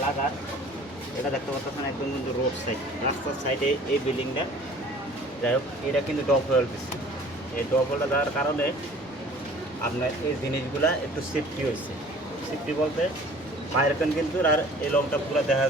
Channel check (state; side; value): normal; both; correlation 0.49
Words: লাগার এটা দেখতে পাচ্ছেন একদম কিন্তু রোড সাইড, রাস্তার সাইডে এই বিল্ডিংটা। যাই হোক, এটা কিন্তু ডব হোয়েল দিচ্ছে। এই ডব হোয়েলটা দেওয়ার কারণে আপনার এই জিনিসগুলা একটু সেফটি হয়েছে। সেফটি বলতে বাইরেখান কিন্তু আর এই লং টাপগুলো দেখা